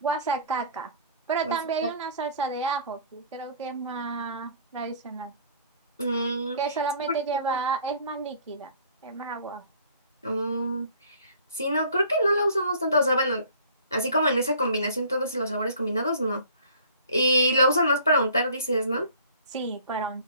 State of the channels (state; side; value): inverted; both; correlation -0.50